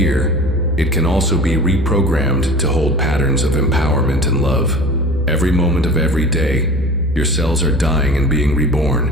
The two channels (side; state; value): both; normal; correlation 0.39